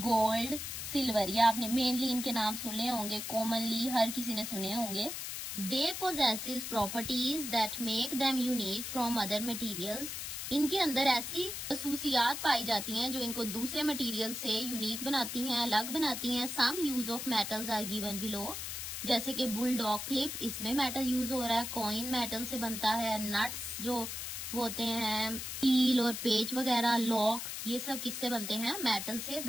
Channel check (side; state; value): left; noise; hiss, 5 dB below the sound